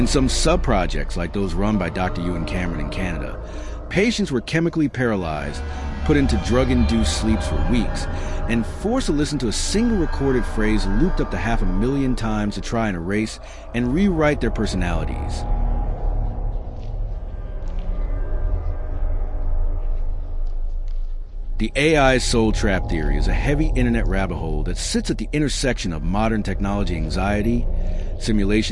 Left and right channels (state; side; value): identical; both; correlation 1.00